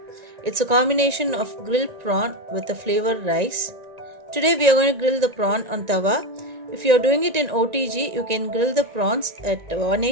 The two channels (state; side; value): late; left; 1.9 ms